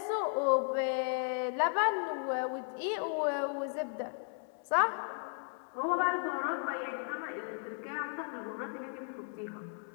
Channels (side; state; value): right; silent; 54 dB below the other